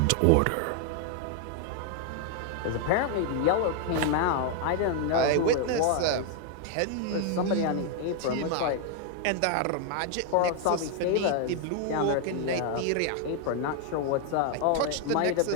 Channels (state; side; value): different; both; correlation 0.00